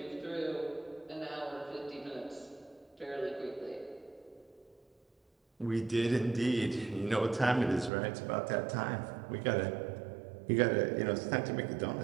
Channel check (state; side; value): drops out; left; at 7.9 s